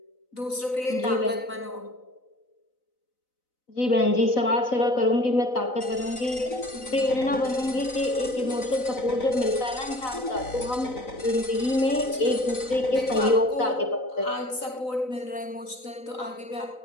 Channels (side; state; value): right; late; 4.0 ms